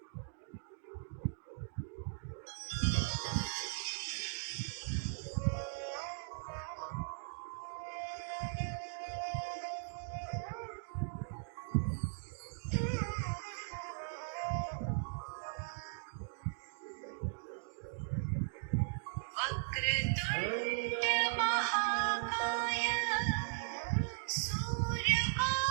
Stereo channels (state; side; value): silent; left; digital silence